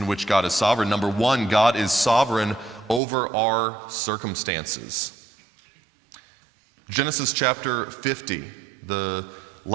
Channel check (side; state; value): left; drops out; at 3.0 s